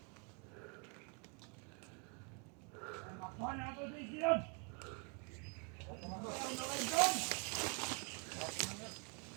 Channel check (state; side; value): quieter; left; 36.3 dB